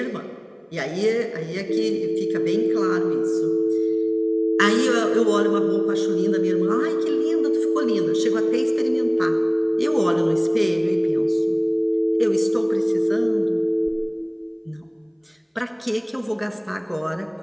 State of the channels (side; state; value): both; identical; correlation 1.00